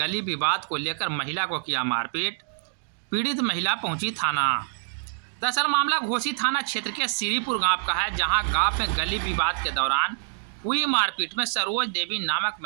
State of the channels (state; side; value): silent; left; digital silence